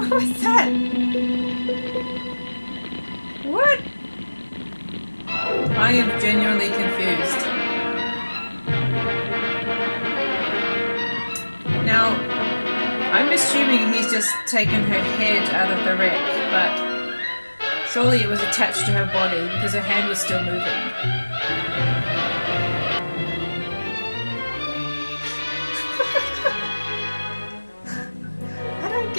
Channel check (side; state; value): both; inverted; correlation -1.00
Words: was that? What? I am genuinely confused. Now, I'm assuming he's just taken her head out of the wreck, but surely it was attached to her body because her hand was still moving. I don't